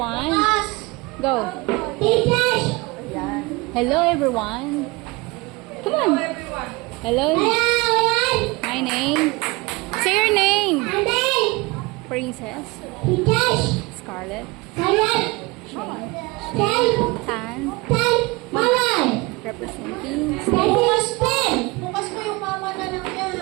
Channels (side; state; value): left; quieter; 24.5 dB